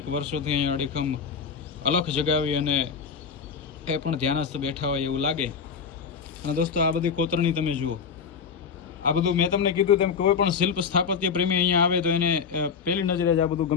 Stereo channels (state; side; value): quieter; right; 6.2 dB